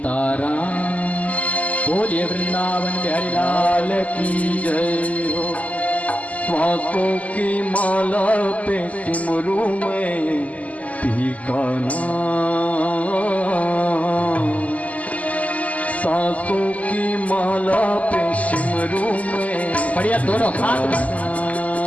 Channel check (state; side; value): late; right; 0.072 ms